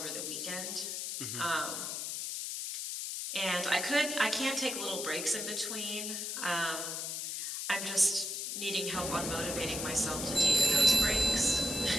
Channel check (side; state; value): left; noise; hiss, 4 dB below the sound